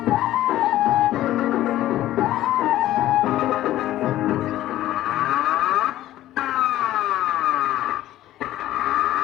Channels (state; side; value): quieter; right; 14.1 dB